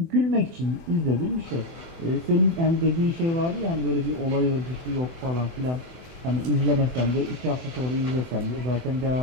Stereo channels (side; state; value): left; late; 24 ms